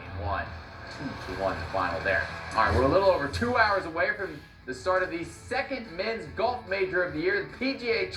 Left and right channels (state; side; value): identical; both; correlation 1.00